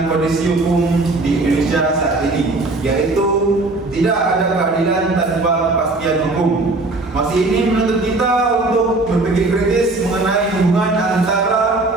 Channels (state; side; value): quieter; left; 3.1 dB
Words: kondisi hukum di Indonesia saat ini, yaitu tidak ada keadilan tanpa kepastian hukum. Masih ini menuntut kita untuk berpikir kritis mengenai hubungan antara